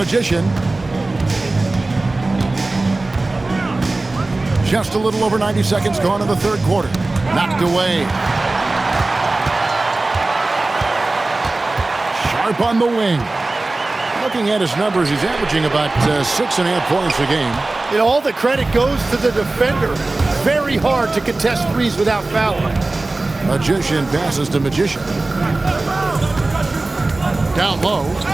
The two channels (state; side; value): quieter; left; 3.1 dB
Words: Just a little over 90 seconds gone in the third quarter. Knocked away. Sharp on the wing. Looking at his numbers, he's averaging about 6.5 points a game. And all the credit goes to the defender. Very hard to contest threes without fouling. Magician passes to Magician. Down low.